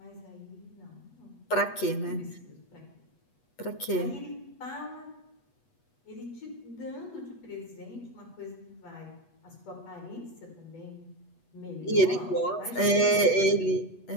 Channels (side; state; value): right; late; 8.2 ms